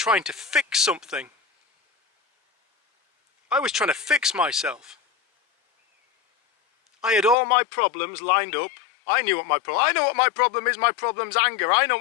to fix something. I was trying to fix myself. I had all my problems lined up. I knew what my problem. I know what my problem is. My problem's anger. I know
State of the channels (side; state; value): right; drops out; at 7.4 s